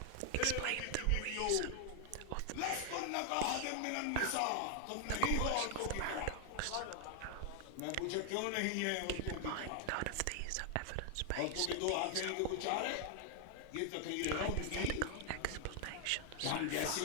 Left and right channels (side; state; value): both; different; correlation 0.00